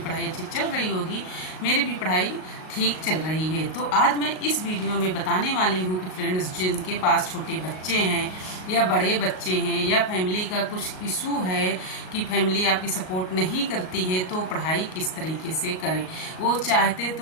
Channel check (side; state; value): right; late; 38 ms